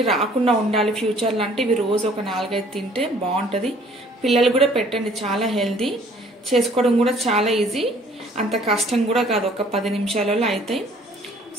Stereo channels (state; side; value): normal; both; correlation 0.57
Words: రాకుండా ఉండాలి ఫ్యూచర్లో అంటే ఇవి రోజు ఒక 4-5 తింటే బాగుంటుంది. పిల్లలు కూడా పెట్టండి, చాలా హెల్దీ, చేసుకోవడం కూడా చాలా ఈజీ, అంత కష్టం కూడా కాదు, ఒక 10 నిమిషాలలో అవుతాయి.